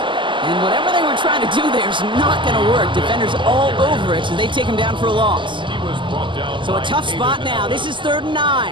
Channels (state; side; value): late; left; 0.24 ms